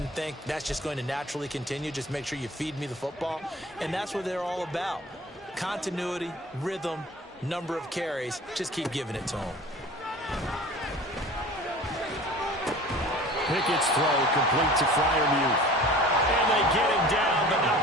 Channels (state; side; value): normal; both; correlation 0.43